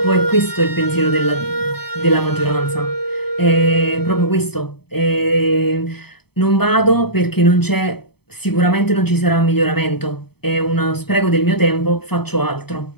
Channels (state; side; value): late; right; 0.97 ms